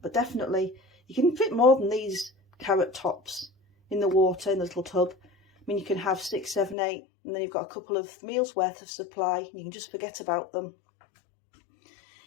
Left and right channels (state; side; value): drops out; right; at 6.8 s